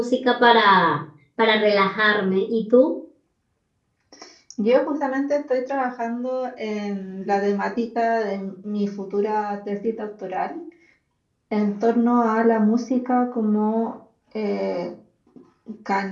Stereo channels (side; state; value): both; identical; correlation 1.00